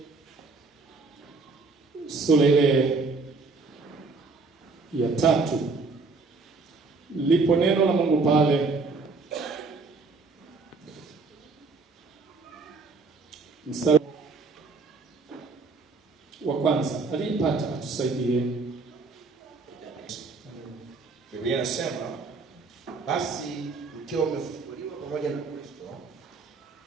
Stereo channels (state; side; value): quieter; left; 4.0 dB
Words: Sura ile ya 3. Lipo neno la Mungu pale. Mstari wa kwanza. Aliyepata atusaidie. Biblia inasema, basi mkiwa mmefufuliwa pamoja na Kristo,